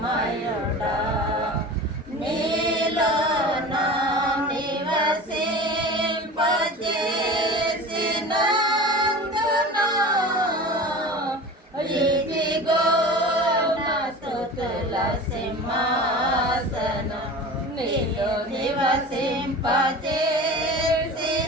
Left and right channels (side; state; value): both; normal; correlation 0.35